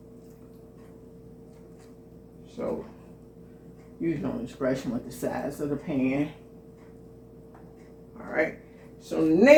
So use your own discretion with the size of the pan. All right. So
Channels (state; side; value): identical; both; correlation 1.00